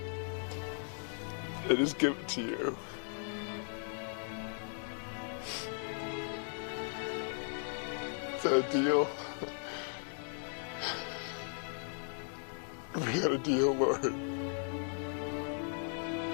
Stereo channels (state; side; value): silent; right; 53 dB below the other